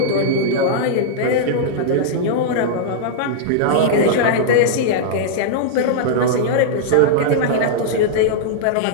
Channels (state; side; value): different; both; correlation -0.02